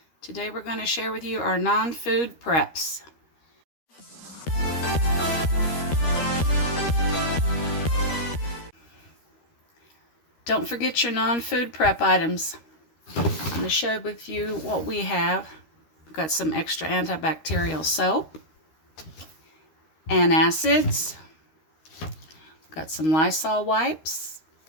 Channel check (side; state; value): right; late; 13 ms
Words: Today we're going to share with you our non-food preps. Don't forget your non-food prep items. I'm going to share with you what we have. We've got some extra antibacterial soap, antacids, got some Lysol wipes,